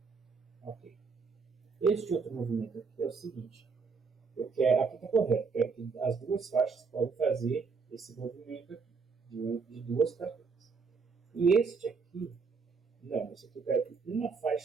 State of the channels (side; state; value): left; quieter; 5.0 dB